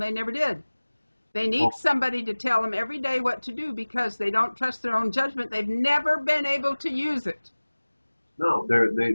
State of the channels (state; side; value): inverted; both; correlation -1.00